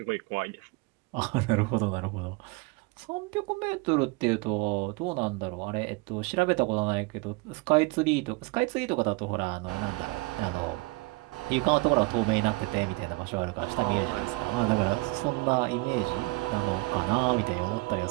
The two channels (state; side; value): quieter; left; 25.3 dB